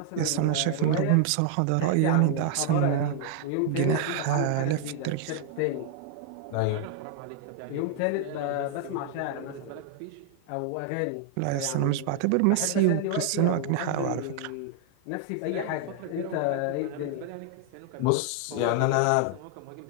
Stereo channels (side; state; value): both; different; correlation 0.00